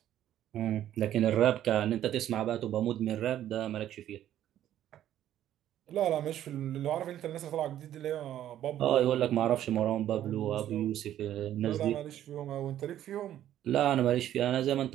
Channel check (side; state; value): left; quieter; 11.8 dB